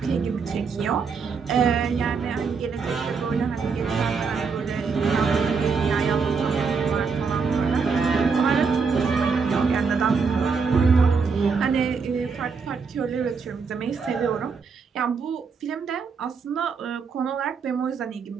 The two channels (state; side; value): quieter; left; 5.3 dB